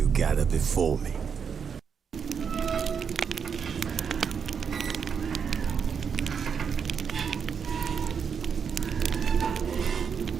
gather before me.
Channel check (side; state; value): left; quieter; 6.7 dB